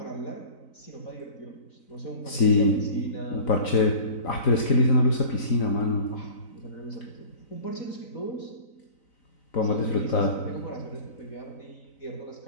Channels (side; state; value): right; late; 4.0 ms